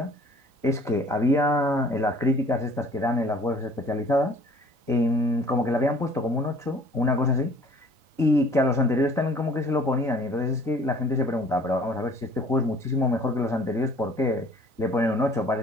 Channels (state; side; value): late; left; 3.9 ms